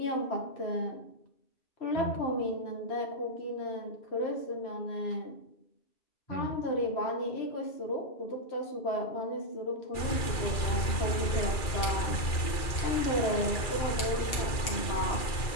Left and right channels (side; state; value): right; late; 2.4 ms